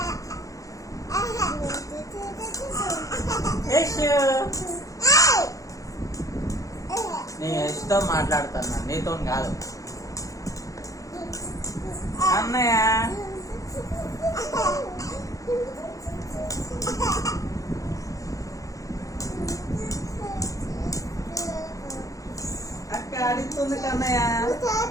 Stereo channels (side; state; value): right; late; 0.16 ms